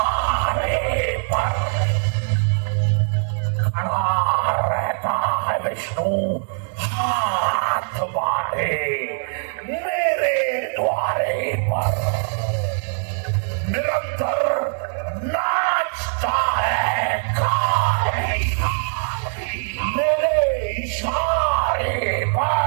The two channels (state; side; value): silent; left; 64 dB below the other